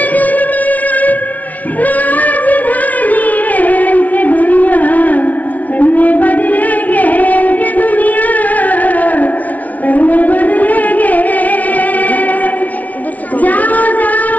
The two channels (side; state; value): right; late; 0.072 ms